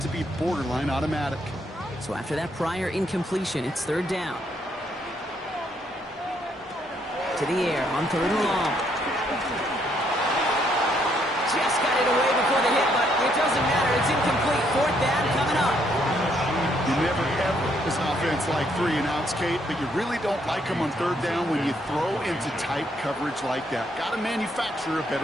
be borderline automatic. So after that prior incompletion, it's 3rd down. To the air on 3rd and long. Just got it away before the hit, but it doesn't matter. It's incomplete. 4th down coming up. You never, ever, as an offense, like 3 and outs, Kate, but you really don't like them on 3rd down when you throw into tight coverage like that. Got to manufacture a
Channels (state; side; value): normal; both; correlation 0.71